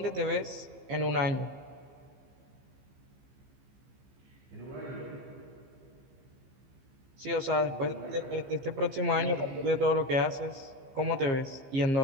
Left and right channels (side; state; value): left; late; 15 ms